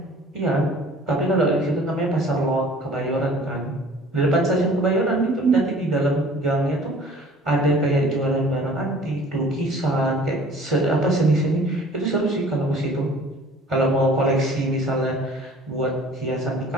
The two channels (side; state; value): both; normal; correlation 0.49